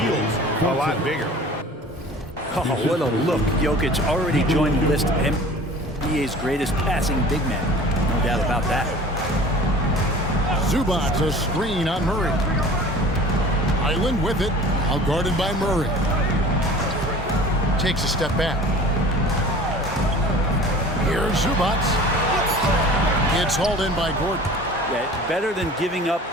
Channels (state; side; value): normal; both; correlation 0.43